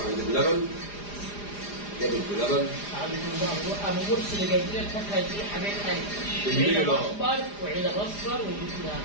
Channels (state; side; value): late; right; 4.9 ms